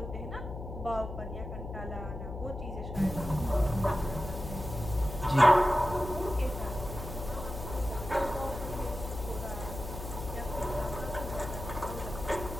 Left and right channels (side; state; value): left; noise; hum, 8 dB below the sound